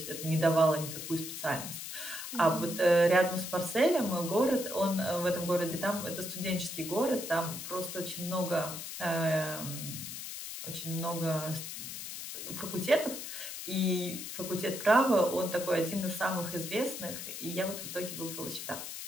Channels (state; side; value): noise; left; hiss, 8 dB below the sound